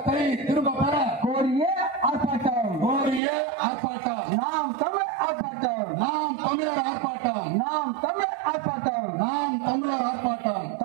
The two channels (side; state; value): left; drops out; at 3.2 s